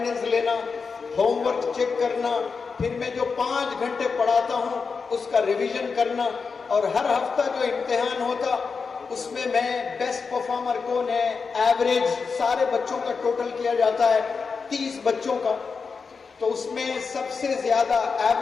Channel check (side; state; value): right; quieter; 5.1 dB